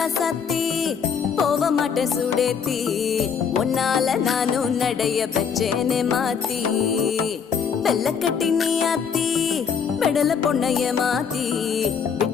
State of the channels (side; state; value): right; quieter; 6.7 dB